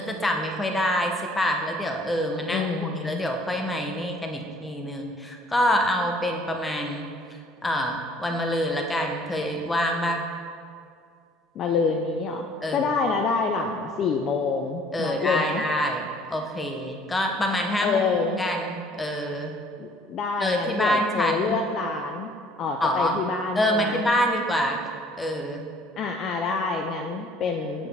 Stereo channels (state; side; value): normal; both; correlation 0.57